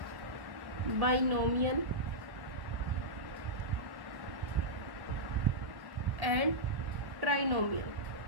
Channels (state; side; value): late; left; 1.1 ms